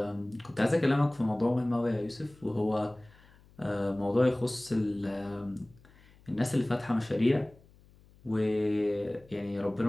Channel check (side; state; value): left; noise; hum, 27 dB below the sound